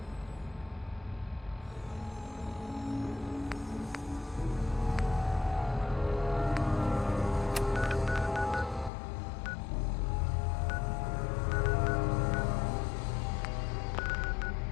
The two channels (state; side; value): drops out; right; at 8.9 s